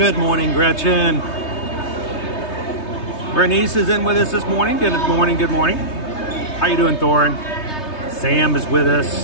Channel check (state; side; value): late; right; 3.2 ms